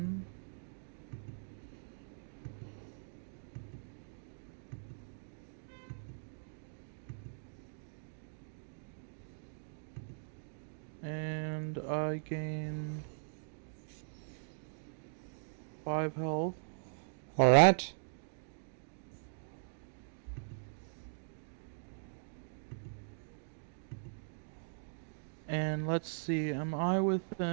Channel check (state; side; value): silent; left; digital silence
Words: And I gain 5 health. Alright. And let's see, am I